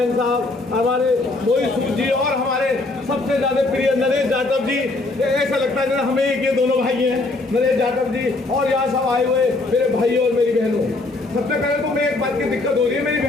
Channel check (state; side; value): quieter; right; 3.2 dB